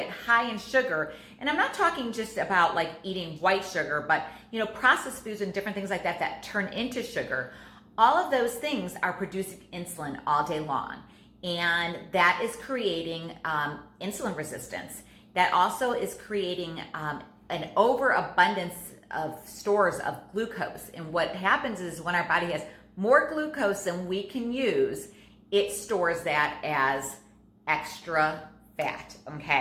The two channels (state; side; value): identical; both; correlation 1.00